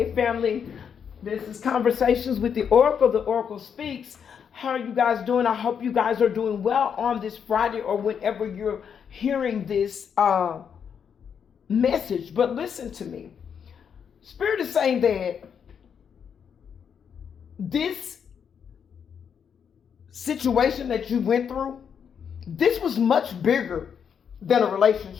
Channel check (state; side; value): quieter; right; 7.4 dB